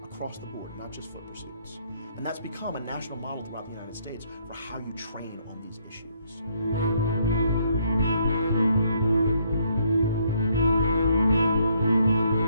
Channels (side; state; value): both; inverted; correlation -0.70